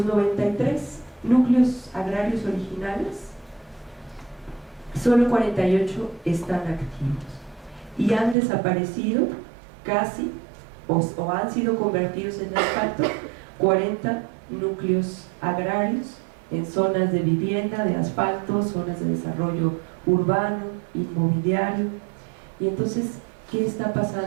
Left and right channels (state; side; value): drops out; left; at 8.3 s